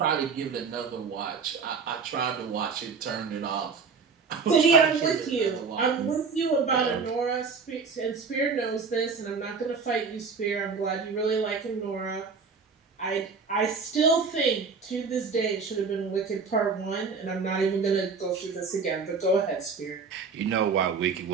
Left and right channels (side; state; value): left; quieter; 5.2 dB